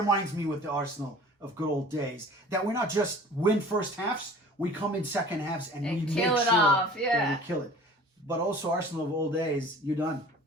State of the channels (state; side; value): normal; both; correlation 0.45